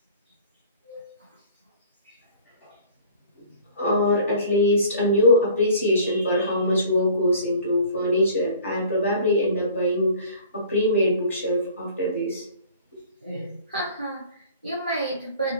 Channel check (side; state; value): both; inverted; correlation -0.48